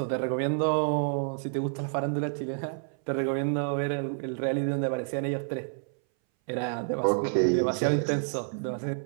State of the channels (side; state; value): left; silent; 59 dB below the other